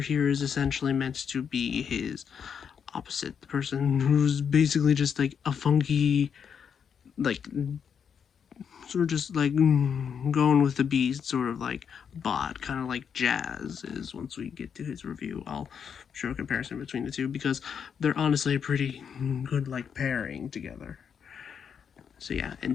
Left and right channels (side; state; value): right; quieter; 7.3 dB